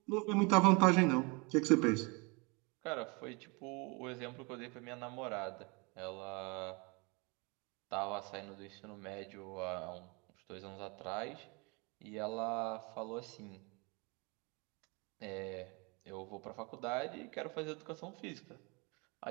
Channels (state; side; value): quieter; left; 29.6 dB